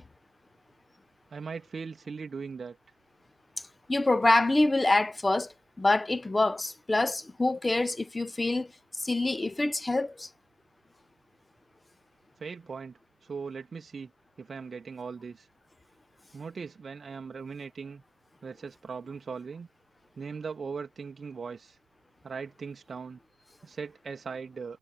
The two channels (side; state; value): both; normal; correlation 0.97